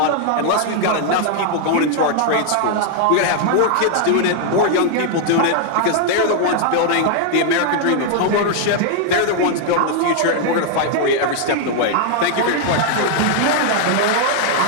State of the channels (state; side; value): different; both; correlation 0.00